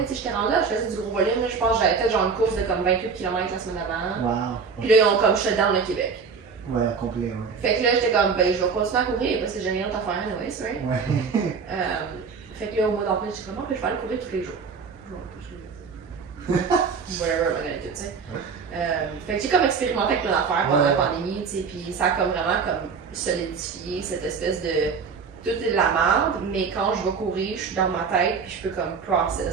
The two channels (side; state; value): left; quieter; 5.5 dB